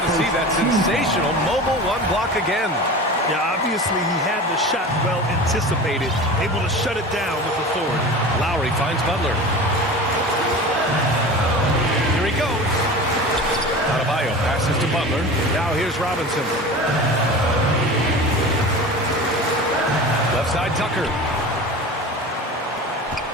to see that sensational mobile one block again. Yeah, obviously he had the shot well anticipated, able to shut it down with authority. Lowry finds Butler. Here he goes. Adebayo passes to Butler. Now here's Robinson. Left side Tucker.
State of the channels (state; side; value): normal; both; correlation 0.34